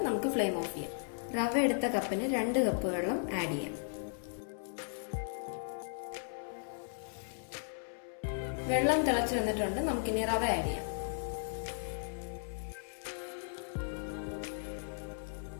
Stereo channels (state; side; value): silent; right; 54 dB below the other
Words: നമുക്ക് ഫ്ലെയിം ഓഫ് ചെയ്യാം. റവ എടുത്ത കപ്പിന് 2 കപ്പ് വെള്ളം ആഡ് ചെയ്യാം. വെള്ളം തിളച്ചു വന്നിട്ടുണ്ട്. നമുക്കിനി റവ ആഡ് ചെയ്യാം.